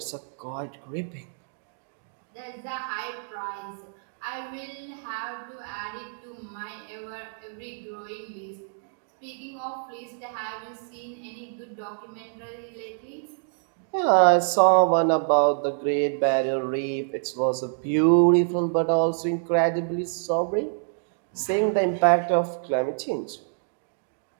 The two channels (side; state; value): left; silent; digital silence